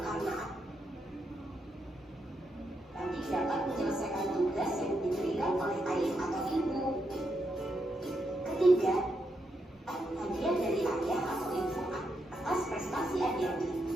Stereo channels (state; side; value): normal; both; correlation 0.82